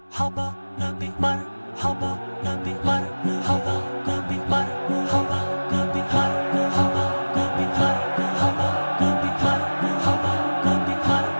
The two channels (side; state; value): both; inverted; correlation -1.00